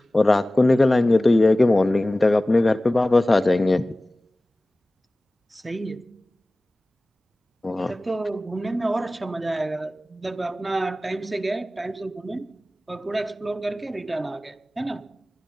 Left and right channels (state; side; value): normal; both; correlation 0.97